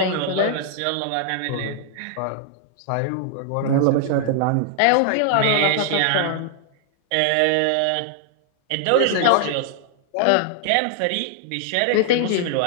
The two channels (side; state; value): both; different; correlation 0.00